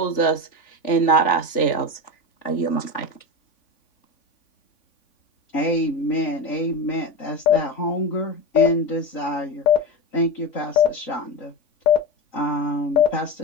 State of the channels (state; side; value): late; right; 3.5 ms